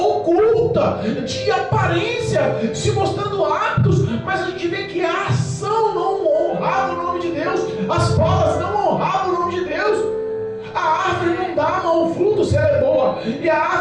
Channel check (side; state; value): both; identical; correlation 1.00